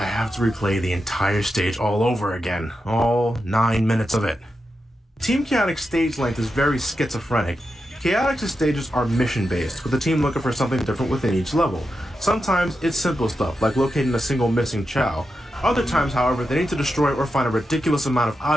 have to replay the entire stage all over again. All 9 minutes of it. Team Chaotix stage length is very schizophrenic. Chaotix's stages are mission-based, with the team looking for something different within each level. Sometimes it's simple stuff, like locating a single missing Chow. Other times, however, they need to destroy or find a ridiculous amount of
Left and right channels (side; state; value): both; normal; correlation 0.88